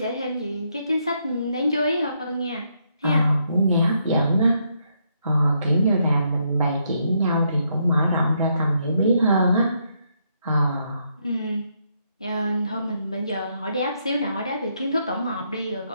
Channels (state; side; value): inverted; both; correlation -0.76